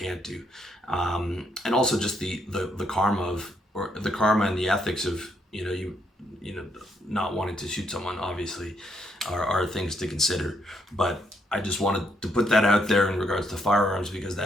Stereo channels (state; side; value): normal; both; correlation 0.74